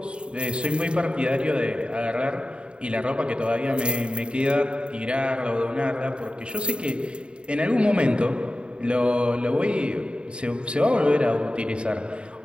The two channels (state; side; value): late; left; 0.053 ms